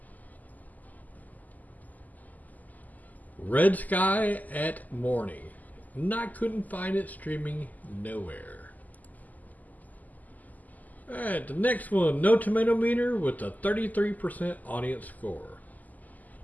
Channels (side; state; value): right; late; 0.081 ms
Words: Red Sky at Morning. And I couldn't find it streaming nowhere. Alright, the next one, No Tomato Meter with a 33% audience score.